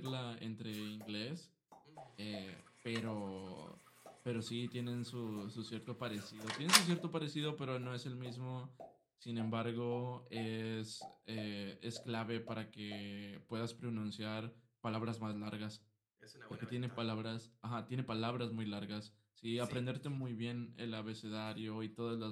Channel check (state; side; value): identical; both; correlation 1.00